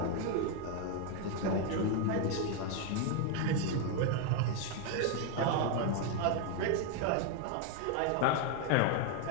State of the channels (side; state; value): both; different; correlation 0.01